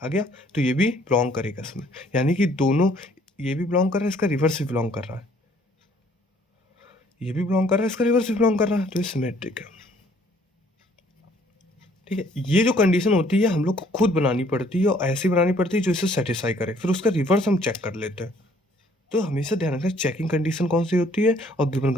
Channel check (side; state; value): both; normal; correlation 0.61